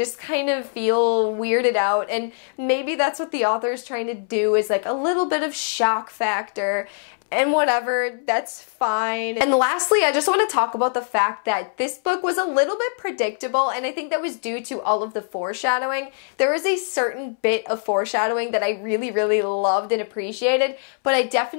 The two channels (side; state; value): right; silent; 64 dB below the other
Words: kind of feel weirded out, and maybe that's what the author is trying to do, is like a little bit of shock factor. And whatever, that's fine. And lastly, I just want to talk about the fact that this book was a little bit predictable, and I think that was due to all of the foreshadowing. There was a certain bit of foreshadowing that I really, really loved and appreciated, but I